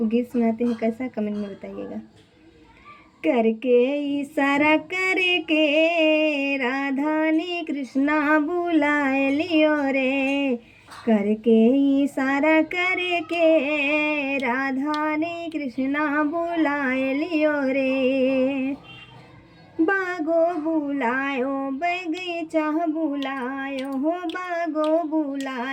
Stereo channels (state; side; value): identical; both; correlation 1.00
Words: गीत सुनाते हैं, कैसा कमेंट में बताइएगा। करके इशारा करके राधा ने कृष्णा बुलाए लियो रे। करके इशारा करके राधा ने कृष्णा बुलाए लियो रे। बागो बुलायो बगीचा बुलायो हो, बागो